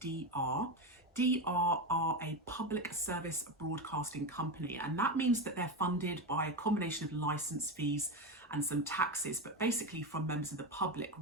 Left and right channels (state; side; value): normal; both; correlation 0.16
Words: DR are a public service broadcasting company, and that means that they're funded by a combination of license fees and some taxes, but basically from members of the public